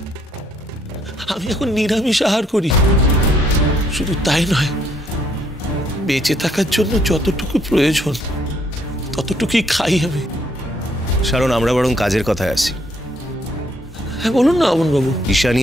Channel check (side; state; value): both; normal; correlation 0.69